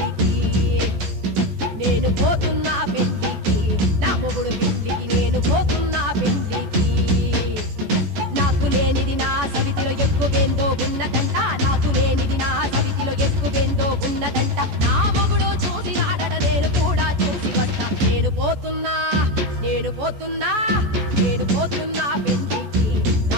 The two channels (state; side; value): late; left; 14 ms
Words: నేను పోతున్నా పెళ్లికి నా మొగుడు పెళ్లికి నేను పోతున్నా పెళ్లికి నాకు లేనిది నా సవితిలో ఎక్కువేందో ఉన్నదంట నాకు లేనిది నా సవితిలో ఎక్కువేందో ఉన్నదంట నా మొగుడు చూసినాడట నేను కూడా చూసి వస్తా నేను పోతున్నా నేను పోతున్నా నేను పోతున్నా పెళ్లికి